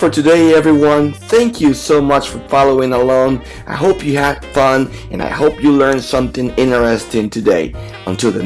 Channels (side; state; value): both; identical; correlation 1.00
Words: today, everyone. Thank you so much for following along. I hope you had fun and I hope you learned something interesting today. Until the